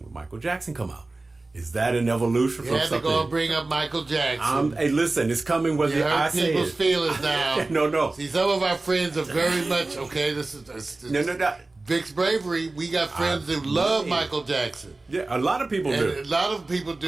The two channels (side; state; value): left; quieter; 3.2 dB